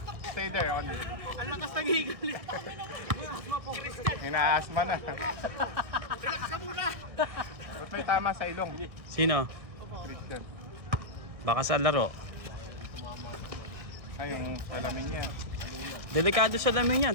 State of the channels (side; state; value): left; late; 1.6 ms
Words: stay there. On. Ang lakas ng higal. Inaasma na. Relax ka muna. Ba't may tama sa ilong? Sino? Christian. Baka sa laro. Ay, yung salamin niya. Delikado sa lamin